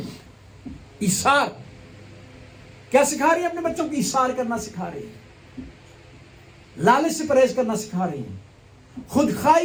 ایثار کیا سکھا رہی ہے؟ اپنے بچوں کو ایثار کرنا سکھا رہی ہے، لالچ سے پرہیز کرنا سکھا رہی ہیں، خود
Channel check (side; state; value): both; identical; correlation 1.00